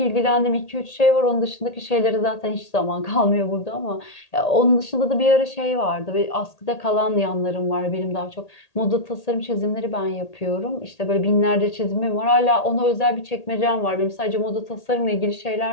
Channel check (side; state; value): right; late; 1.8 ms